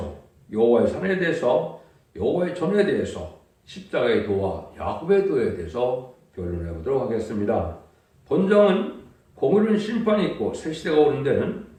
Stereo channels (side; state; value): both; identical; correlation 1.00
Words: 여호와의 산에 대해서, 여호와의 전에 대해서, 십자가의 도와 야곱의 도에 대해서 변론해 보도록 하겠습니다. 본정은 공의로운 심판이 있고 새 시대가 오는 데는